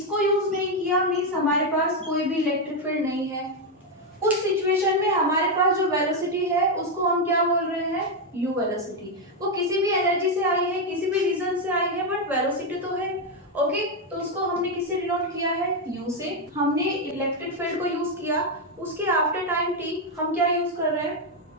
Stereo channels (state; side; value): normal; both; correlation 0.04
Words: यूज नहीं किया मींस हमारे पास कोई भी इलेक्ट्रिक फील्ड नहीं है, उस सिचुएशन में हमारे पास जो वेलोसिटी है उसको हम क्या बोल रहे हैं, u वेलोसिटी। वो किसी भी एनर्जी से आई है, किसी भी रीजन से आई है, बट वेलोसिटी तो है। ओके, तो उसको हमने किससे डिनोट किया है, u से। हमने इलेक्ट्रिक फील्ड को यूज किया, उसके आफ्टर टाइम t हम क्या यूज कर रहे हैं,